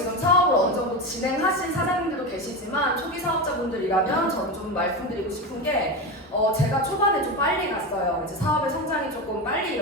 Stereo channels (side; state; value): both; normal; correlation 0.19